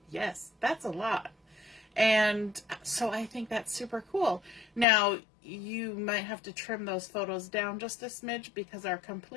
Yes, that's a lot. And so I think that's super cool. Now, you might have to trim those photos down just a smidge because our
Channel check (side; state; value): right; drops out; at 4.9 s